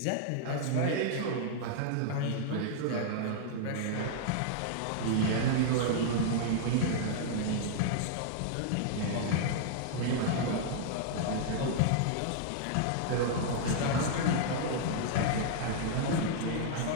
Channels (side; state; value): both; different; correlation -0.01